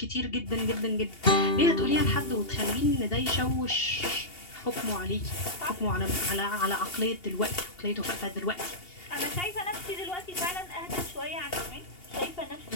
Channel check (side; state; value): right; late; 2.8 ms